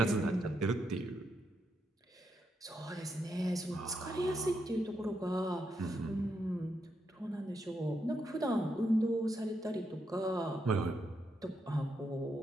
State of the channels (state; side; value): normal; both; correlation 0.81